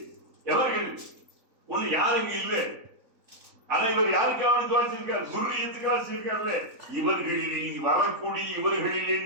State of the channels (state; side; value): late; left; 3.9 ms